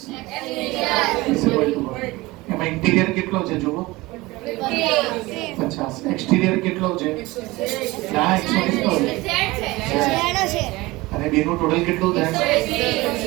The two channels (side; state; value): left; quieter; 20.9 dB